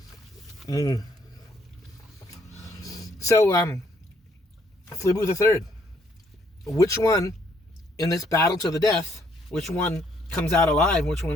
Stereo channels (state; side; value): normal; both; correlation 0.68